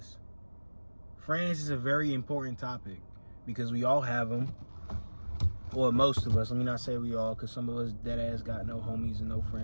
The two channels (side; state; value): both; inverted; correlation -1.00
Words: friends is a very important topic because we all have them. Or most of us, let me not say we all, because some of us dead ass got no homies and no